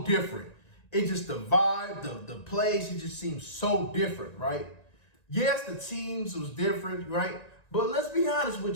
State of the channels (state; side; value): late; right; 1.9 ms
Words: different. It just, the vibe, the plays, it just seems so different, right? Yes, the teams was different, right? But let's be honest